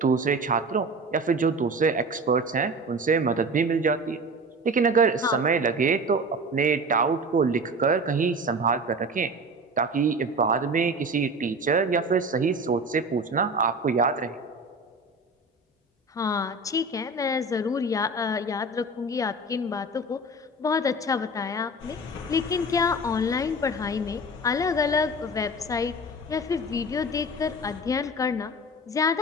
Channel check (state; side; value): normal; both; correlation 0.34